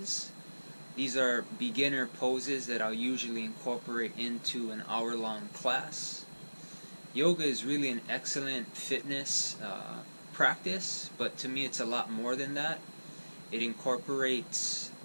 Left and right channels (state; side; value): inverted; both; correlation -1.00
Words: These are beginner poses that I'll usually incorporate into an hour-long class. Yoga is really an excellent fitness practice, but to me it's a lot more than that. It incorporates